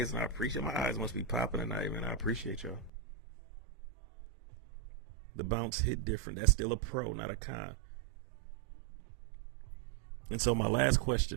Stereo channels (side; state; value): left; drops out; at 2.9 s